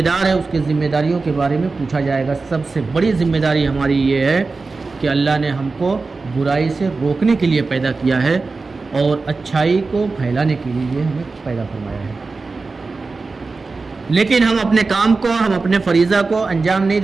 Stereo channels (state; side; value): quieter; left; 4.0 dB